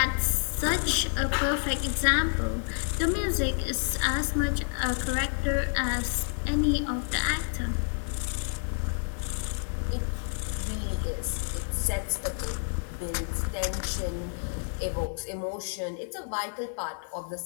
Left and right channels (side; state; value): right; silent; digital silence